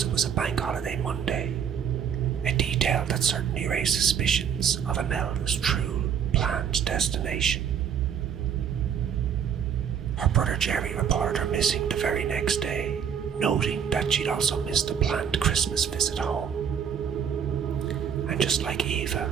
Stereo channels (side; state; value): left; quieter; 7.8 dB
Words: it was a bank holiday Monday, a detail that certainly raised suspicions of Imelda's true planned destination. Her brother Jerry reported her missing the very next day, noting that she'd also missed a planned Christmas visit home. And just like Eva,